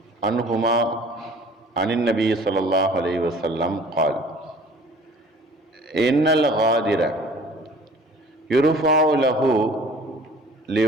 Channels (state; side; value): normal; both; correlation 0.49